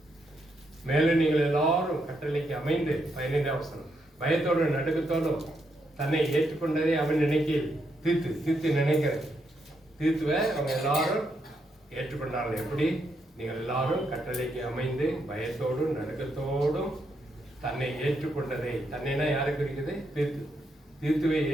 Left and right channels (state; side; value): normal; both; correlation 0.79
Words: மேலும் நீங்கள் எல்லாரும் கட்டளைக்கு அமைந்து 15வது வசனம் பயத்தோடும் நடுக்கத்தோடும் தன்னை ஏற்றுக்கொண்டதை அவன் நினைக்கையில் தீர்த்து நினைக்கிற தீர்த்துவை அவங்க எல்லாரும் ஏற்றுக்கொண்டார்கள். எப்படி, நீங்கள் எல்லாரும் கட்டளைக்கு அமைந்து பயத்தோடும் நடுக்கத்தோடும் தன்னை ஏற்றுக்கொண்டதை, தன்னைனா யாருக்கு இருக்குது, தீர்த்துவை